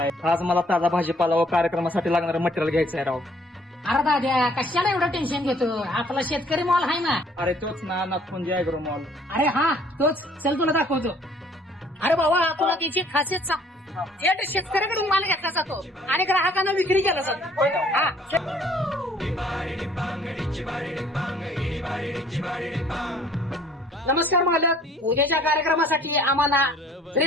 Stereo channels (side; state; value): both; normal; correlation 0.59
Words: आज मला ताजा भाजीपाला व कार्यक्रमासाठी लागणारं मटेरियल घ्यायचं आहे राव. अरे दाद्या कशाला एवढं टेन्शन घेतो, आपला शेतकरी मॉल आहे ना. अरे तोच ना, नागपुंजी ऍग्रो मॉल. अरे हा तोच, चल तुला दाखवतो. अरे बाबा तुला त्याची खासियत सांग, थेट शेतकऱ्याकडून माल घेतला जातो आणि ग्राहकांना विक्री केला जातो. हा नमस्कार मालक, उद्याच्या कार्यक्रमासाठी आम्हाला